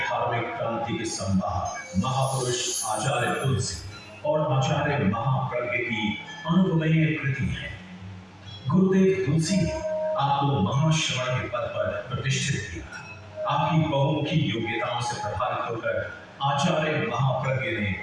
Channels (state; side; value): identical; both; correlation 1.00